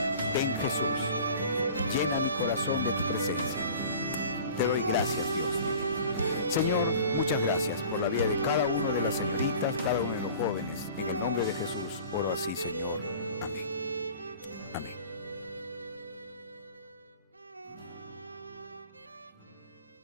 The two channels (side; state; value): both; inverted; correlation -0.43